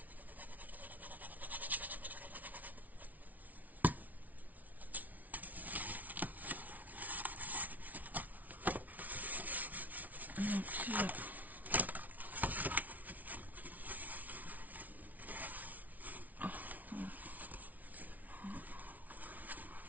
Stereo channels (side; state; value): left; late; 0.075 ms